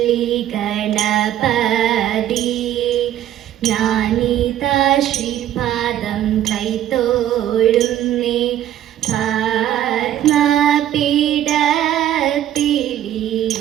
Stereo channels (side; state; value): left; quieter; 11.8 dB